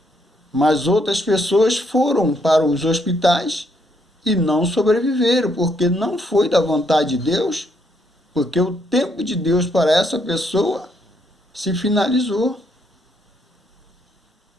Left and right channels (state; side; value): normal; both; correlation 0.73